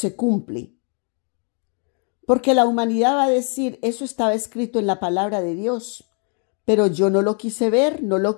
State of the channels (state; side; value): quieter; right; 39.6 dB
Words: cumple. Porque la humanidad va a decir, eso estaba escrito en la palabra de Dios, pero yo no lo quise ver, no lo